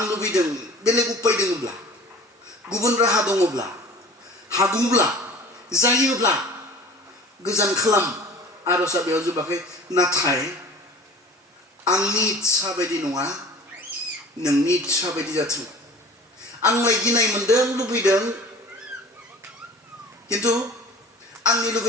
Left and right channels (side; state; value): both; normal; correlation 0.44